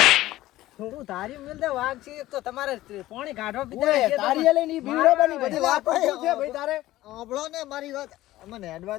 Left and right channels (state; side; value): quieter; right; 16.0 dB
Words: તું તારી મિલતે વાઘ છે એક તો તમારે પાણી કાઢવા પીધા છે તારી લઈને ઈ બીવરાબાની બધી વાત શું છે ભાઈ તારે? સાંભળો ને મારી વાત. મને હેડવા